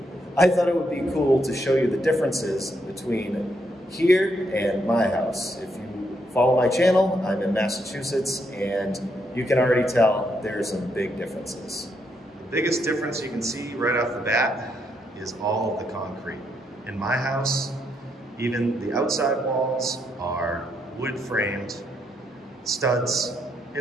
I thought it would be cool to show you the differences between here and my house. If you follow my channel, I'm in Massachusetts, and you can already tell there's some big differences. The biggest difference you can see right off the bat is all of the concrete. In my house, even the outside walls are wood framed, studs,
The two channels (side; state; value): both; normal; correlation 0.77